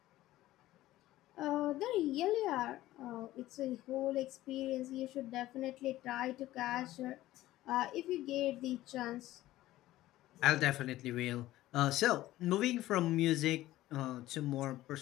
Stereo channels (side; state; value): right; quieter; 15.6 dB